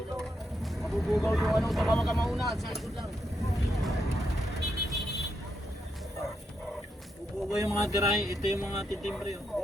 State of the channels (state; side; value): normal; both; correlation 0.82